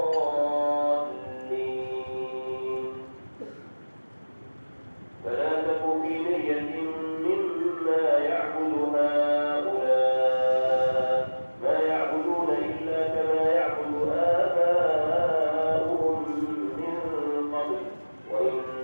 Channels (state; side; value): inverted; both; correlation -1.00